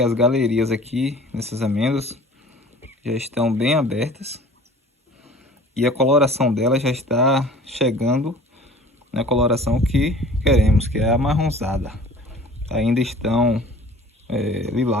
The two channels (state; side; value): normal; both; correlation 0.47